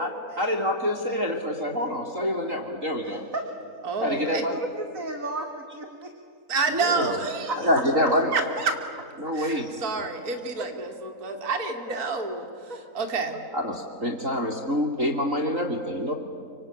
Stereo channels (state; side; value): late; left; 3.9 ms